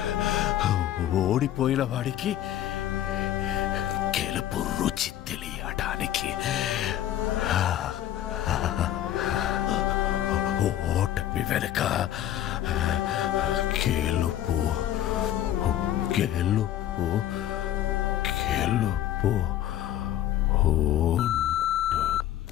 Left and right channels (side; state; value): right; quieter; 12.2 dB